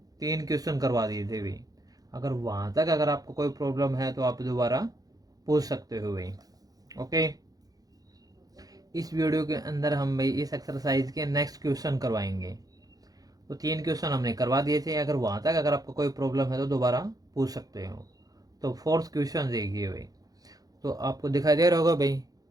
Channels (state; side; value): late; left; 0.18 ms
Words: 3 क्वेश्चन करवा दिए थे भाई। अगर वहाँ तक अगर आपको कोई प्रॉब्लम है तो आप दोबारा पूछ सकते हो भाई। ओके, इस वीडियो के अंदर हम भाई इस एक्सरसाइज के नेक्स्ट क्वेश्चन करवाएंगे। तो 3 क्वेश्चन हमने करवा दिए थे। अगर वहाँ तक अगर आपको कोई प्रॉब्लम है तो दोबारा पूछ सकते हो। तो फोर्थ क्वेश्चन देखिए भाई। तो आपको दिखाई दे रहा होगा भाई,